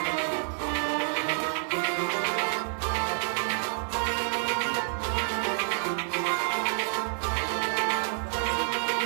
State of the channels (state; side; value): silent; left; digital silence